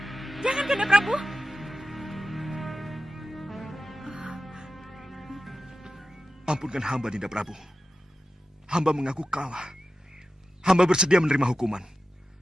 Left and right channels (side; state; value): both; normal; correlation 0.92